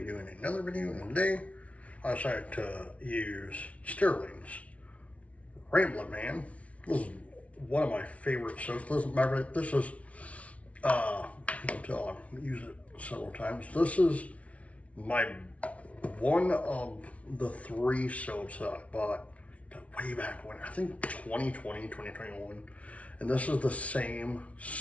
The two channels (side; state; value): right; late; 0.065 ms